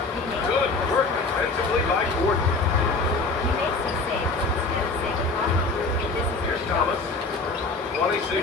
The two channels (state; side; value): quieter; right; 3.8 dB